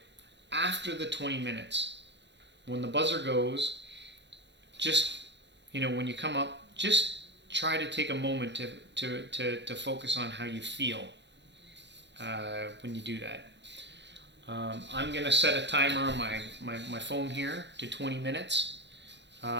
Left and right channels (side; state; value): left; late; 0.52 ms